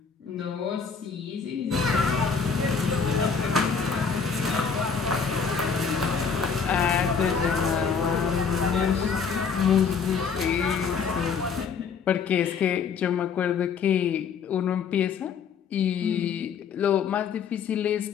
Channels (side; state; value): right; quieter; 6.0 dB